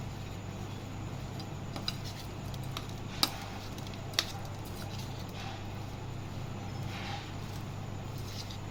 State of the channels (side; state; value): both; identical; correlation 1.00